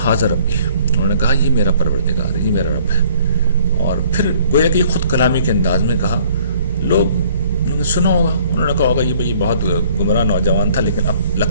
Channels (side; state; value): both; inverted; correlation -0.58